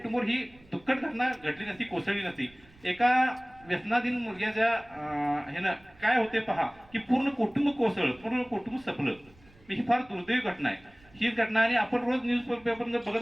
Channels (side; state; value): right; noise; rumble, 27 dB below the sound